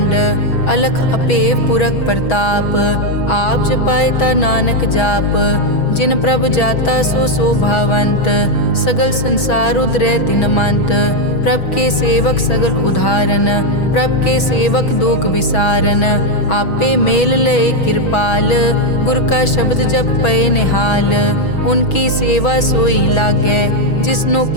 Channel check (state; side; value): late; right; 6.2 ms